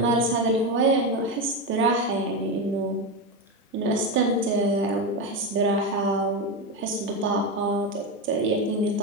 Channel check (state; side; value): normal; both; correlation 0.14